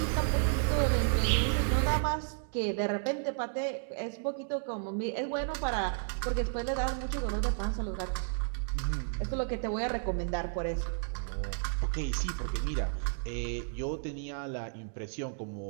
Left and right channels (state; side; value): silent; left; digital silence